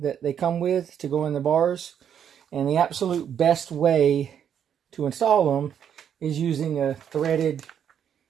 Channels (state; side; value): quieter; left; 8.7 dB